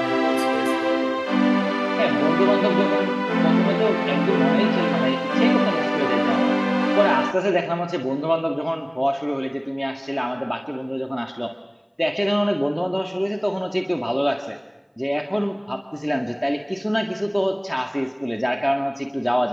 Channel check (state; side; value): identical; both; correlation 1.00